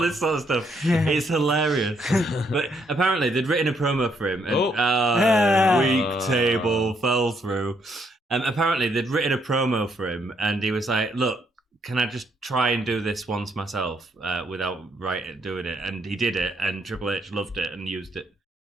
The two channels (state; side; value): normal; both; correlation 0.73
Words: sort of stuff. Yeah. It's hilarious. But apparently, they'd written a promo for him, and Oh. weak table fell through. Apparently, they'd written a promo for him, and he was like, "Look, can I just try and do this once myself without doing it?" And he did it, and Triple H loved it and used it